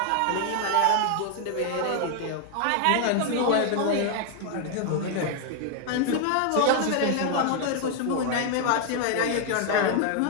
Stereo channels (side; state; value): both; different; correlation 0.00